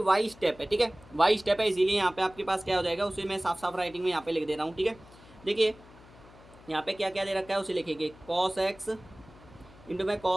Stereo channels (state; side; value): noise; left; hum, 23 dB below the sound